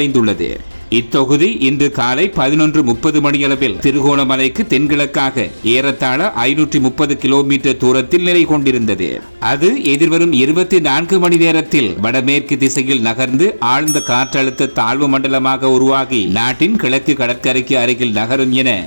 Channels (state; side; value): inverted; both; correlation -1.00